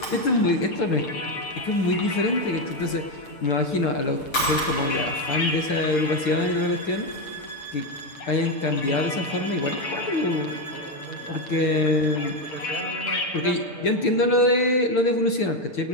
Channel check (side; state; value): right; late; 6.7 ms